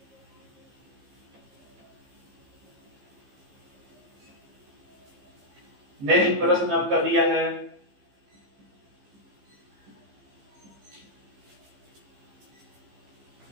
नेक्स्ट प्रश्न आपका दिया है,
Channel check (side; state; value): left; late; 15 ms